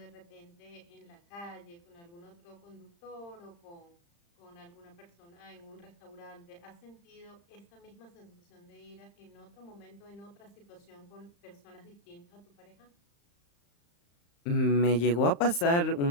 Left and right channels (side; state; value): right; late; 35 ms